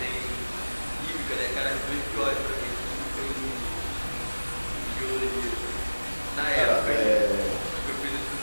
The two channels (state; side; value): inverted; both; correlation -1.00